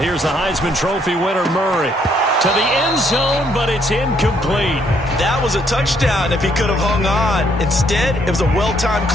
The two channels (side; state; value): both; normal; correlation 0.69